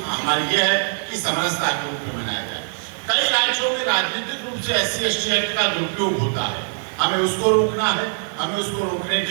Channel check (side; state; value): left; silent; digital silence